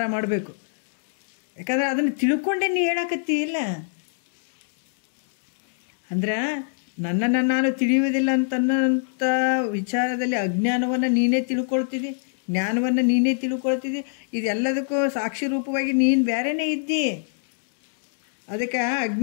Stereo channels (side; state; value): right; silent; digital silence